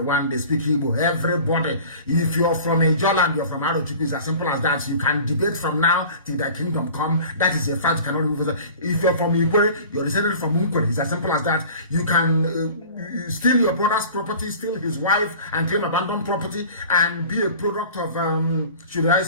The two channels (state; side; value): inverted; both; correlation -0.43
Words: They speak Igbo. Everybody. If you're from a Joland, you're from Arochukwu, it's as simple as that. You can debate from now till the kingdom come. That is a fact. You cannot remove it. If you're from Ipob, you're descended from Uncle. It's as simple as that. You can steal your brother's property, steal his wife, and claim abandoned property, and be a product of, should I